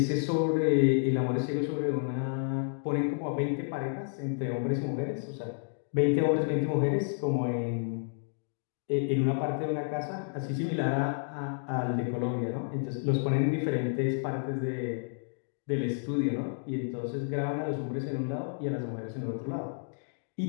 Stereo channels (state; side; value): silent; right; digital silence